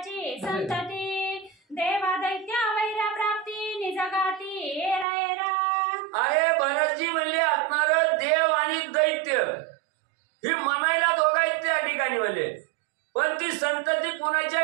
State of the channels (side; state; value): left; drops out; at 5.1 s